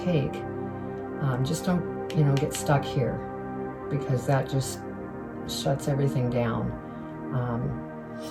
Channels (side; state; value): both; identical; correlation 1.00